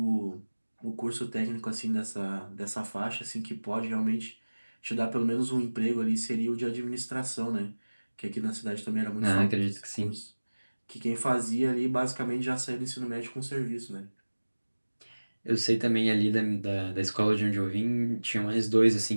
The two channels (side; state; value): both; inverted; correlation -1.00